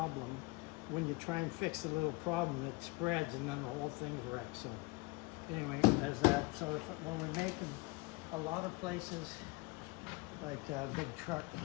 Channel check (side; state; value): right; quieter; 25.5 dB